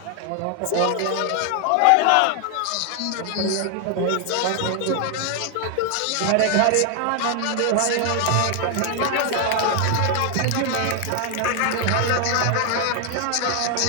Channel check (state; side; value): different; both; correlation 0.01